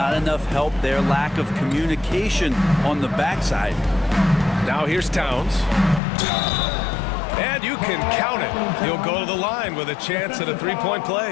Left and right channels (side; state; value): right; drops out; at 6.0 s